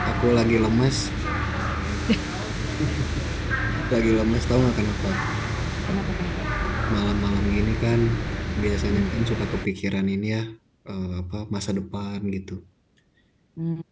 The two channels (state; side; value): identical; both; correlation 1.00